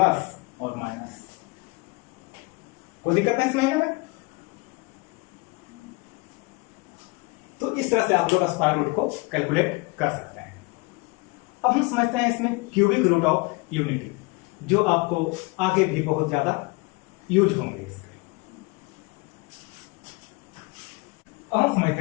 और माइनस, कोई दिक्कत नहीं इस महीने में। तो इस तरह से आप लोग स्क्वायर रूट को कैलकुलेट कर सकते हैं। अब हम समझते हैं इसमें क्यूबिक रूट ऑफ यूनिटी, जो आपको आगे भी बहुत ज्यादा यूज होंगे इसके। अब हम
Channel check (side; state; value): right; quieter; 26.9 dB